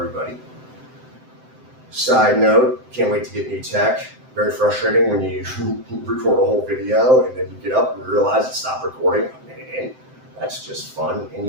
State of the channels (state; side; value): late; left; 7.8 ms